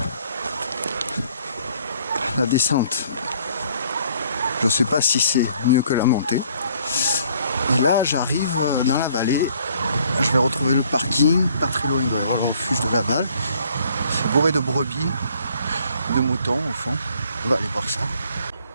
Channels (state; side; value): inverted; both; correlation -0.60